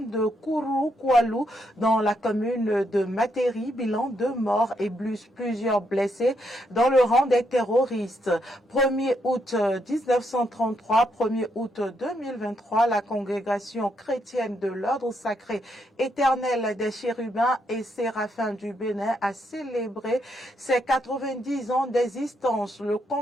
de Kourou-Koualou, dans la commune de Materi. Bilan 2 morts et plusieurs blessés dans le rang des terroristes. 1er août 1933, 1er août 2023, la congrégation chrétienne de l'ordre sacré éternel des chérubins et séraphins du Bénin a célébré ses 90 ans d'existence. Le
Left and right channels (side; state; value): both; normal; correlation 0.77